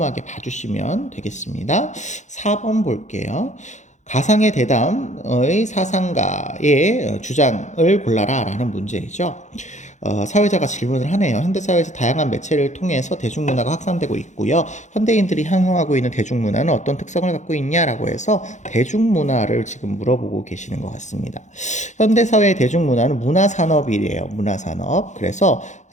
봐주시면 되겠습니다. 4번 볼게요. 가상의 대담의 사상가의 주장을 골라라 라는 문제이죠. 사회자가 질문을 하네요. 현대사회에서 다양한 매체를 통해서 대중문화가 확산되고 있고요. 현대인들이 향유하고 있는 대중문화는 어떤 특성을 갖고 있냐라고 해서 대중문화를 지금 물어보고 계시는 것 같습니다. 현대사회의 대중문화는 문화산업이래요. 문화산업. 그래서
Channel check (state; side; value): late; right; 0.35 ms